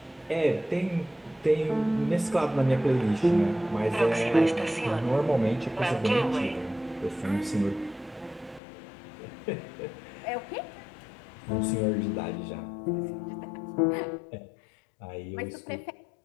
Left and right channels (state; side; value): drops out; right; at 8.6 s